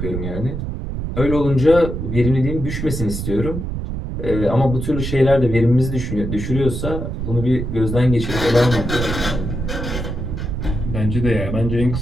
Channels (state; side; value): noise; right; rumble, 4 dB below the sound